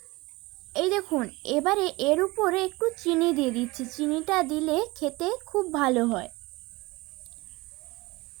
এই দেখুন এবারে এর উপরে একটু চিনি দিয়ে দিচ্ছি। চিনিটা দিলে খেতে খুব ভালো হয়।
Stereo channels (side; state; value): left; quieter; 22.3 dB